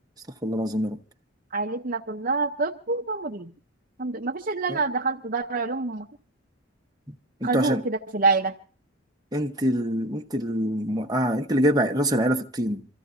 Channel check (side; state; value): both; normal; correlation 0.26